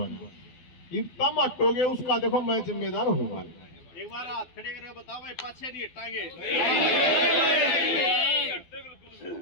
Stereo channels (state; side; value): late; right; 12 ms